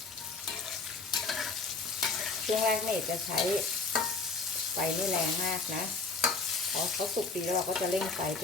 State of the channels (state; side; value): quieter; right; 4.0 dB